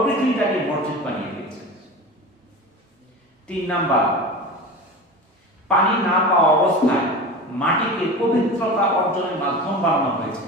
পৃথিবীটাকে মসজিদ বানিয়ে দিয়েছে। 3 নাম্বার, পানি না পাওয়া অবস্থায় মাটিকে পবিত্রতা অর্জনের মাধ্যম বানানো হয়েছে।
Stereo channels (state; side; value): normal; both; correlation 0.31